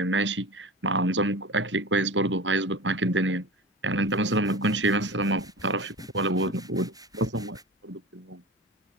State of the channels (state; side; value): normal; both; correlation 0.32